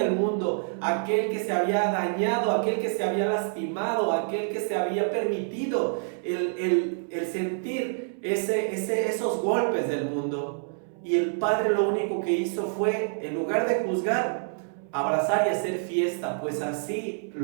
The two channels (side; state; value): left; silent; 60 dB below the other